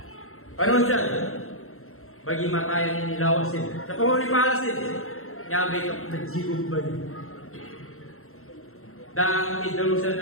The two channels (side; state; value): right; late; 0.62 ms